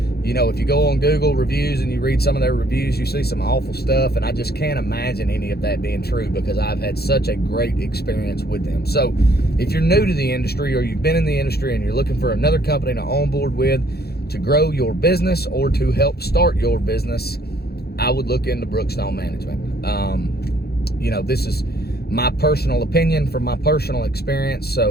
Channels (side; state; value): right; late; 0.46 ms